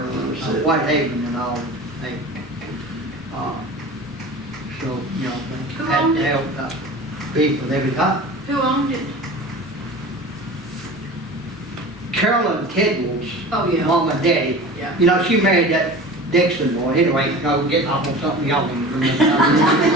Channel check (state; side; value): normal; both; correlation 0.36